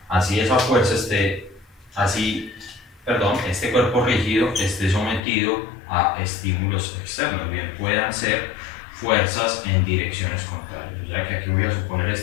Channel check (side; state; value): right; drops out; at 5.2 s